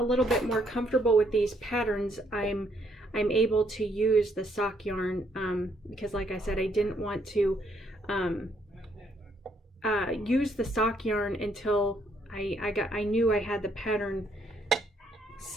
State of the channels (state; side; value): normal; both; correlation 0.71